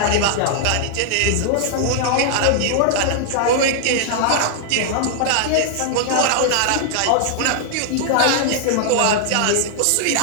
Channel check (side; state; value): both; different; correlation -0.01